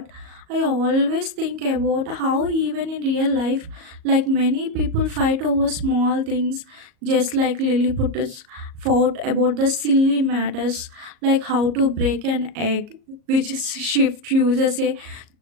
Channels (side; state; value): left; late; 38 ms